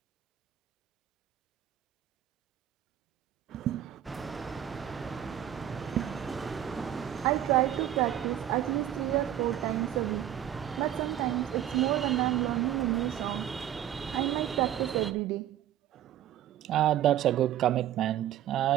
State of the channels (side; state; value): left; quieter; 11.5 dB